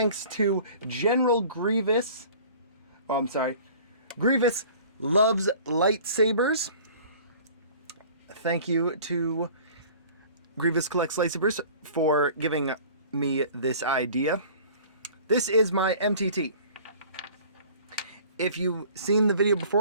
to General Grievous. Oh, I'm sorry. Grievous Loves Lightsabers. Thank you to Grievous Collects Lightsabers for giving me this idea. This is my MTT. If you've seen the video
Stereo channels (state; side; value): inverted; both; correlation -0.46